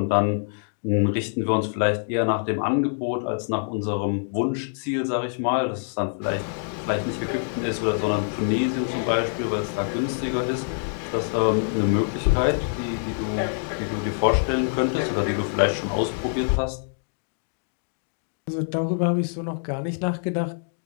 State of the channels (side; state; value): right; silent; digital silence